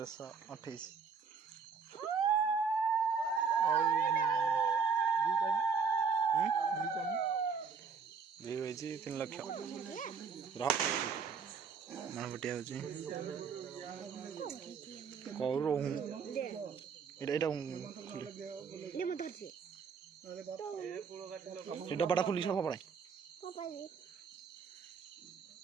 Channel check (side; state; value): left; quieter; 5.8 dB